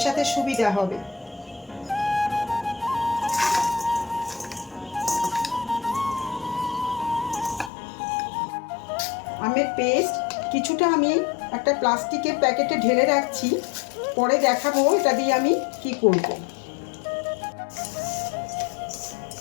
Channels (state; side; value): drops out; right; at 7.7 s